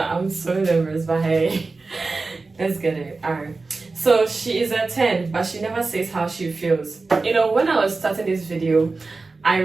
I'm so nervous, but hey, let's get it. Alright, so she is a 10, but she never says how she feels. When I was starting this video, I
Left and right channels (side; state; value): left; quieter; 3.8 dB